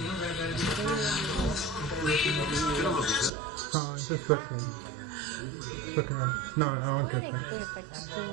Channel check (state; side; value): drops out; left; at 3.3 s